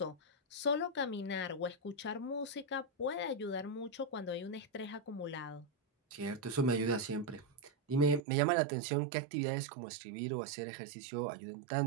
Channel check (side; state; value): left; drops out; at 8.2 s